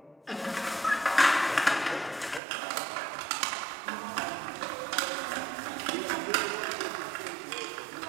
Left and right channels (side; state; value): left; drops out; at 2.4 s